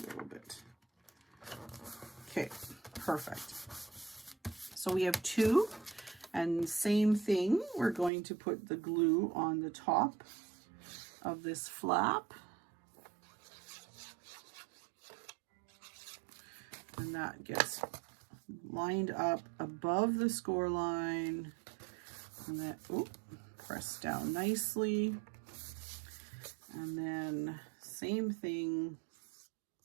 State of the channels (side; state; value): left; drops out; at 8.1 s